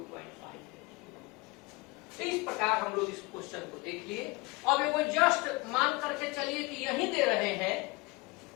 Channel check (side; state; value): right; quieter; 24.7 dB